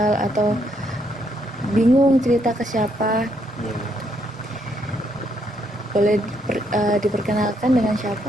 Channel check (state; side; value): normal; both; correlation 0.74